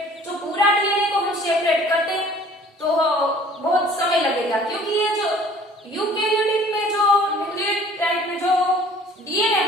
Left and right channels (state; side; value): normal; both; correlation 0.52